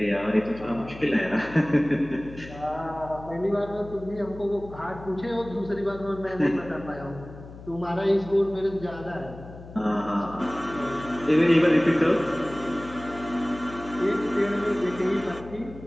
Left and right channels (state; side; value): noise; left; hum, 16 dB below the sound